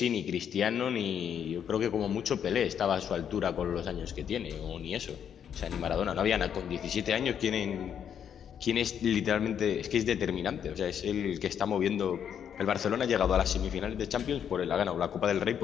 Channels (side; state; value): right; quieter; 8.6 dB